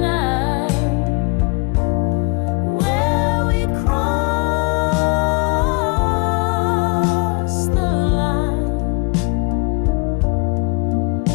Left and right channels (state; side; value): quieter; right; 30.3 dB